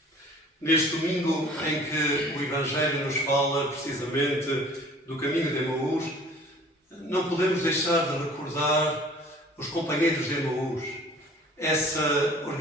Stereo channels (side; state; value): both; normal; correlation 0.49